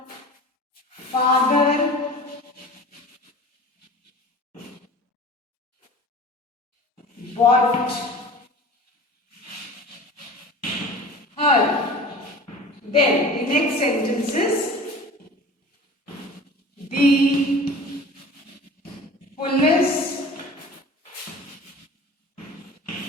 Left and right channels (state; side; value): normal; both; correlation 0.40